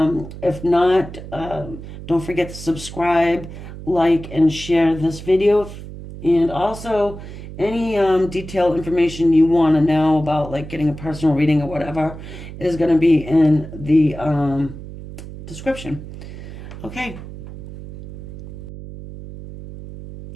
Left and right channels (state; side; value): noise; right; hum, 12 dB below the sound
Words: not, don't forget to subscribe, like, and share this video. And also, any detailed information you want to know about, like getting a personal reading or whatever, is going to be in the description. Okay.